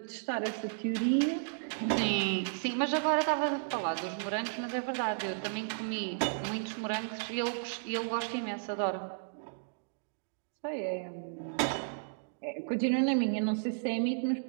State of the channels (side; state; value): left; silent; digital silence